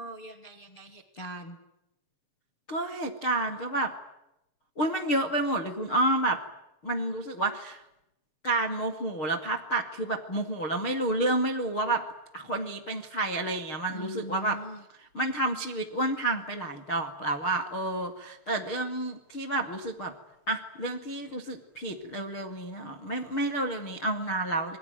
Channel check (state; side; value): late; right; 6.6 ms